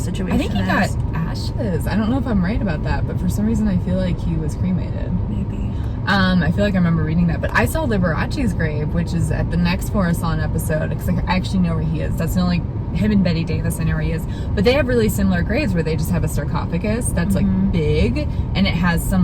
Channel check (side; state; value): both; identical; correlation 1.00